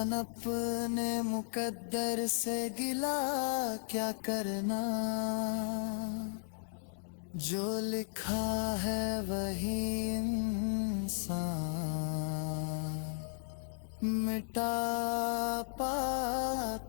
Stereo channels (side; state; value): right; silent; digital silence